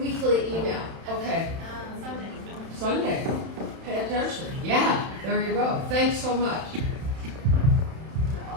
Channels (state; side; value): late; left; 31 ms